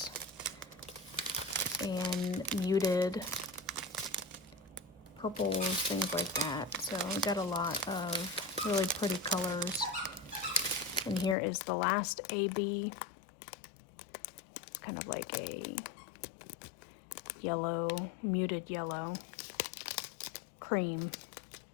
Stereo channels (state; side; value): drops out; right; at 11.4 s